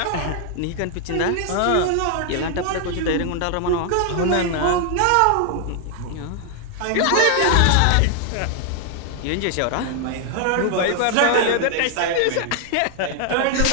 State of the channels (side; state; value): both; different; correlation 0.00